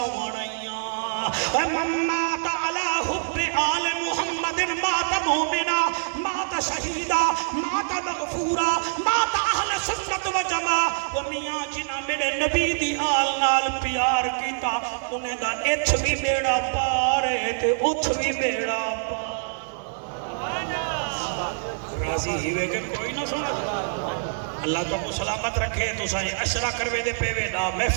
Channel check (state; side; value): silent; left; 62 dB below the other